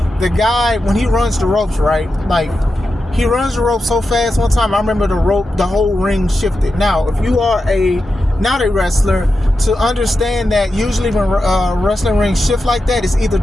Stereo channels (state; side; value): normal; both; correlation 0.90